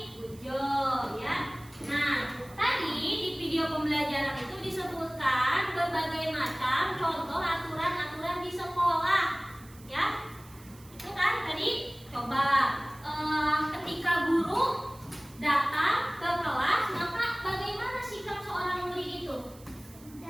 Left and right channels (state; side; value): noise; right; hiss, 23 dB below the sound